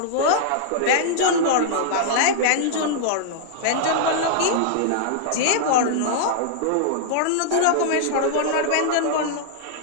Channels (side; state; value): both; different; correlation -0.01